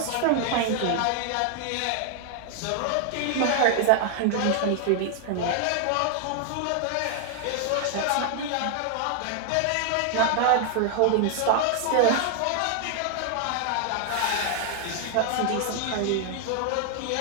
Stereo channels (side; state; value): both; different; correlation 0.00